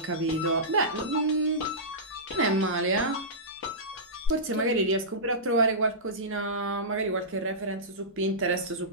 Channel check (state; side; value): normal; both; correlation -0.17